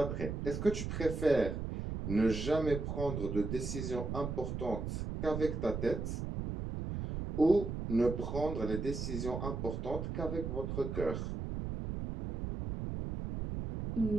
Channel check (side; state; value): right; noise; rumble, 4 dB below the sound